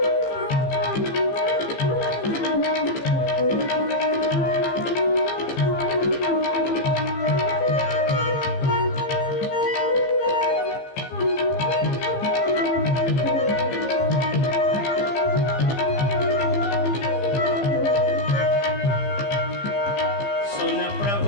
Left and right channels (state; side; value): late; right; 15 ms